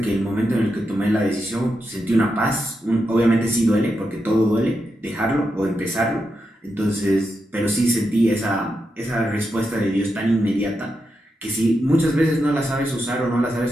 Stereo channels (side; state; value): both; normal; correlation 0.86